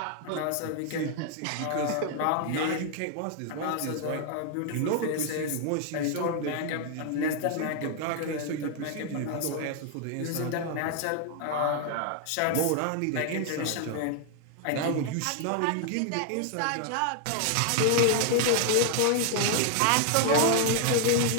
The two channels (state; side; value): different; both; correlation 0.00